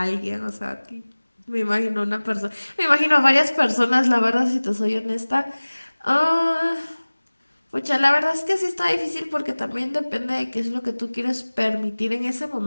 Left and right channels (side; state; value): both; inverted; correlation -1.00